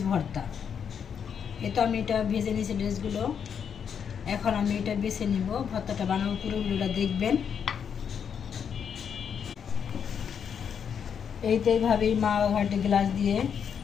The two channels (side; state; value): right; quieter; 7.5 dB